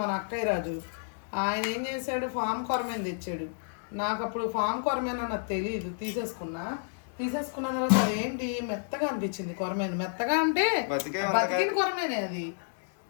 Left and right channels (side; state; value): right; silent; digital silence